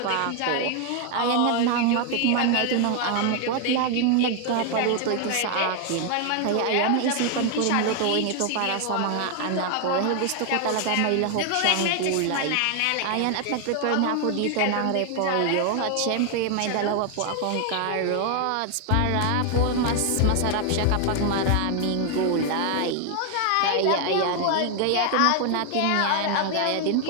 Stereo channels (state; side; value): different; both; correlation 0.00